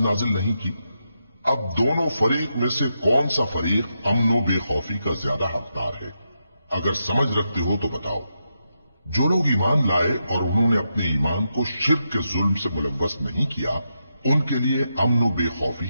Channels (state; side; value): inverted; both; correlation -0.85